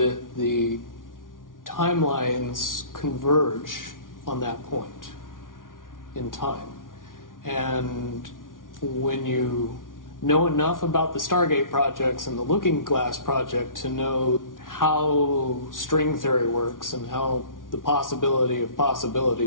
the timelines converge on that point in time. And when you know enough about the Stargate projects and the Looking Glass project to know how string theory works and how the possibility of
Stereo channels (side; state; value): right; late; 0.89 ms